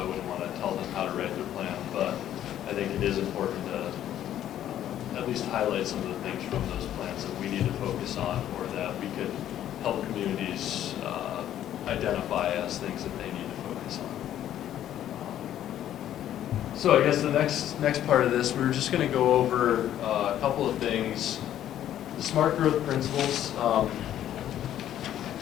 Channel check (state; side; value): quieter; right; 11.5 dB